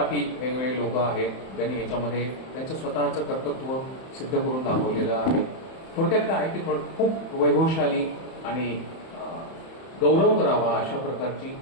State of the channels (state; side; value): late; right; 31 ms